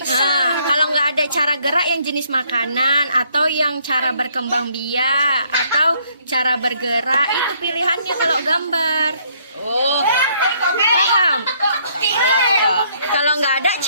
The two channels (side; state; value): both; inverted; correlation -0.66